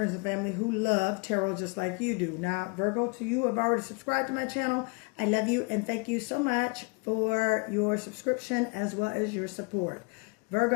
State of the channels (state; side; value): quieter; right; 31.6 dB